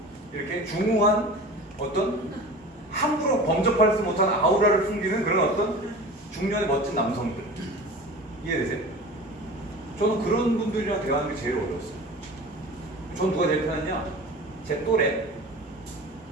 이렇게 중후한 어떤 함부로 범접할 수 못하는 아우라를 숨기는 그런 어떤 중년의 멋진 남성들. 이해되세요? 저는 그런 분들이랑 대화하는 게 제일 어려웠어요. 전 누가 제일 편했냐? 제 또래에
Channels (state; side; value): normal; both; correlation 0.36